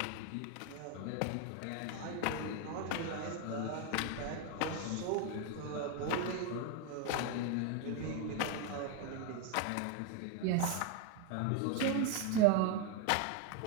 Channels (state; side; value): different; both; correlation 0.01